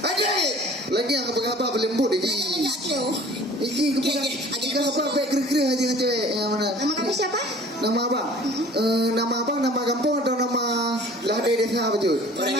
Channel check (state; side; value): normal; both; correlation 0.48